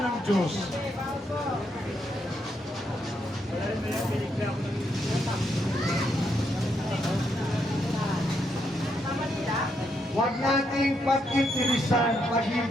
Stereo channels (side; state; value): both; normal; correlation 0.78